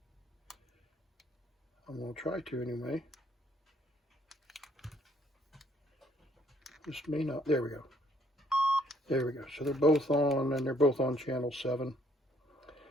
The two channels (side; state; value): both; normal; correlation 0.65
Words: I'm going to try to anyway. This may not. There we go. There we go. So they're both on, and they're both on channel 7.